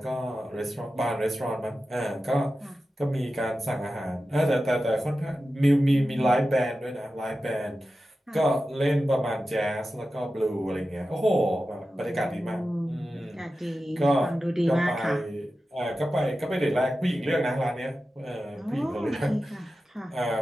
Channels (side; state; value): both; normal; correlation 0.93